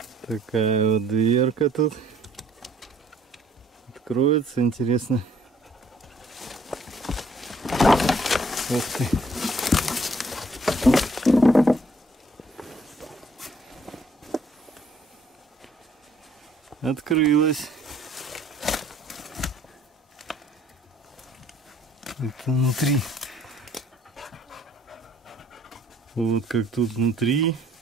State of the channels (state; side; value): normal; both; correlation 0.61